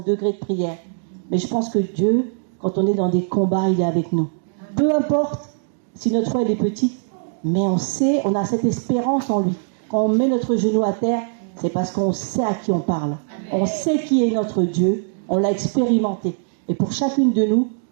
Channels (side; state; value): left; silent; digital silence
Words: degré de prière. Mais je pense que Dieu, quand on est dans des combats, il est avec nous. Peu importe si notre foi elle est petite, mais on a cette espérance en lui. Quand on met notre genou à terre, c'est parce qu'on sait à qui on parle. On sait qui est notre Dieu. On l'a expérimenté. Et pour chacune de nous,